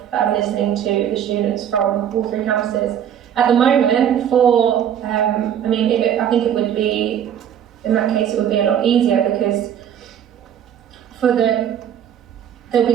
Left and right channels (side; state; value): left; quieter; 9.4 dB